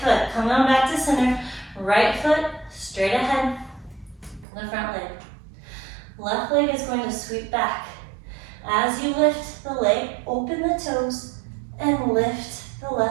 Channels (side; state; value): left; drops out; at 4.5 s